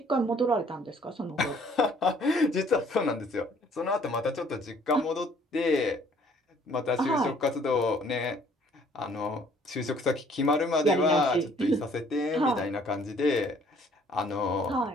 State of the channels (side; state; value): both; normal; correlation 0.59